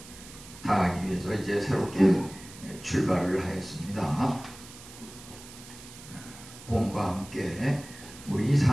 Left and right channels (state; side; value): noise; right; hiss, 17 dB below the sound